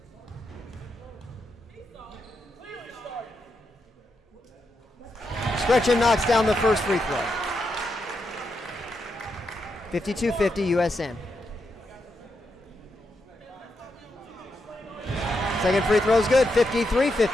Scretchen knocks down the first free throw. 52-50 USN. Second free throw is good.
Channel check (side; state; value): both; normal; correlation 0.84